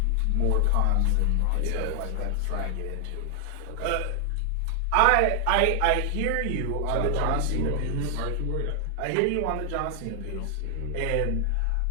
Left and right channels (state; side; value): different; both; correlation 0.00